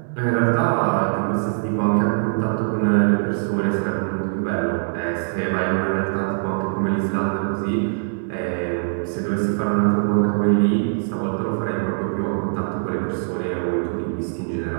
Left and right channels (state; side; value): silent; left; digital silence